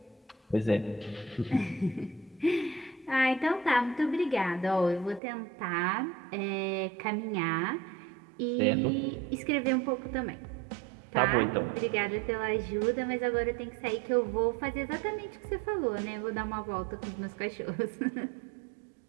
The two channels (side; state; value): left; drops out; at 5.2 s